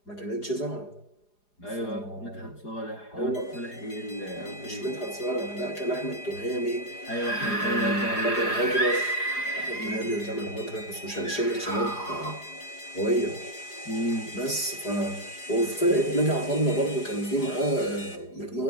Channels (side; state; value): right; late; 4.9 ms